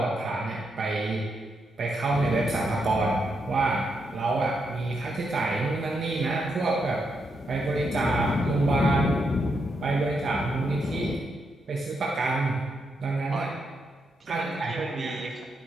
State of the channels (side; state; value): both; normal; correlation 0.81